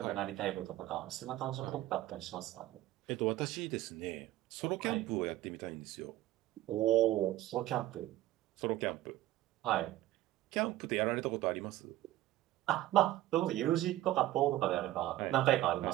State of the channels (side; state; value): left; quieter; 15.3 dB